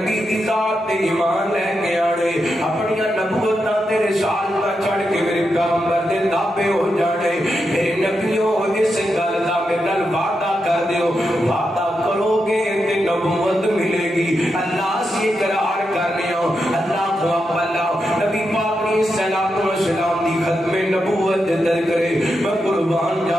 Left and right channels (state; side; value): normal; both; correlation 0.86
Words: دی ذات تے ایمان لے کے آنے، اپنیاں نبوتاں تے رسالتاں چڑھ کے میرے پیغمبر دے تابع ہو جانے۔ میرے نبیوں اس گل دا میرے نال وعدہ کر دیو، وعدہ کرو گے تے نبوت ملے گی۔ اللہ سے اقرار کرنے ہو، اللہ کو اللہ نبی پاک نے صلوات و سلام دی ختم نبوت در کرے۔ میں قربان